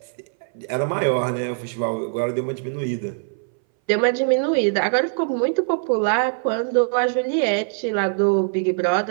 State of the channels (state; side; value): silent; left; 60 dB below the other